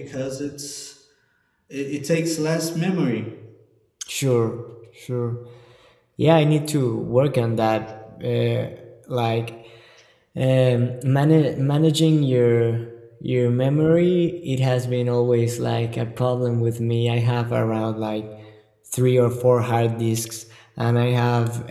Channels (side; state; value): both; identical; correlation 1.00